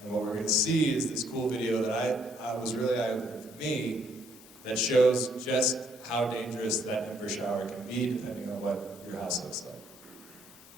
And what we're going to see is this cool video that I was really eye-opening for me that shows just how dangerous that ember shower can be depending on what your house looks like.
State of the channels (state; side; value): normal; both; correlation 0.68